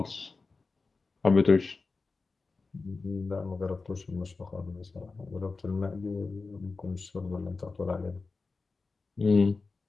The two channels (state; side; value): quieter; right; 4.0 dB